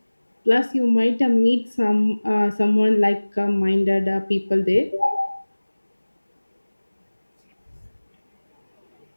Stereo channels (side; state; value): both; inverted; correlation -1.00